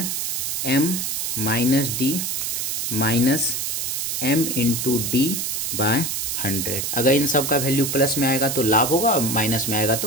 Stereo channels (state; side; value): noise; right; hiss, 1 dB below the sound